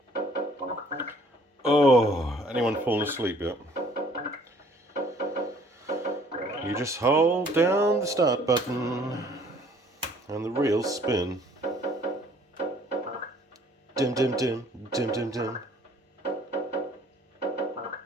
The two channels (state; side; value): normal; both; correlation 0.58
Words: Oh, anyone fallen asleep yet? You just hold down the start button and the reels spin. Dim dim dim dim dim dim.